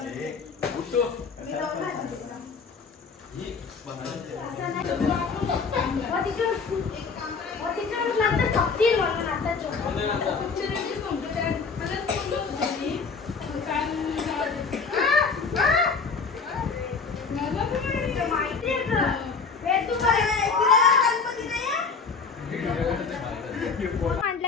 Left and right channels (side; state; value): right; quieter; 5.0 dB